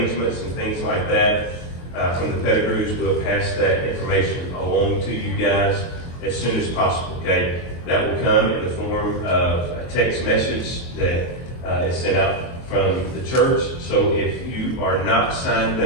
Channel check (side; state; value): right; late; 23 ms